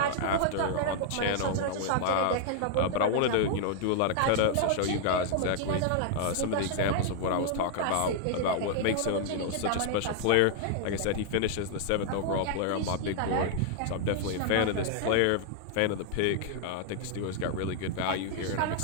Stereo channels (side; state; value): both; different; correlation 0.00